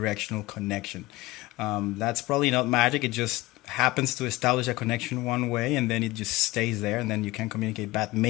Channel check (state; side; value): quieter; right; 19.7 dB